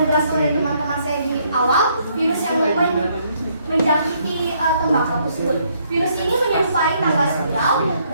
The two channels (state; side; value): inverted; both; correlation -0.70